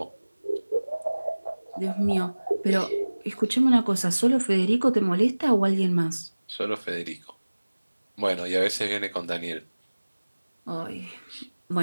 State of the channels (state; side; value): inverted; both; correlation -1.00